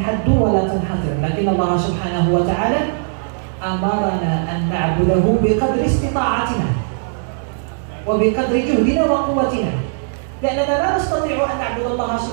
ولا تنحصر، لكن الله سبحانه وتعالى أمرنا أن نعبده بقدر استطاعتنا وبقدر جهدنا وقوتنا، لأننا لا نستطيع أن نعبد الله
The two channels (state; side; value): silent; left; digital silence